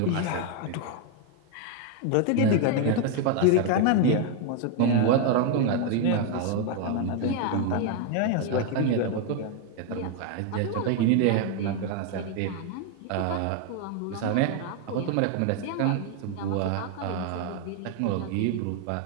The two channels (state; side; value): different; both; correlation 0.01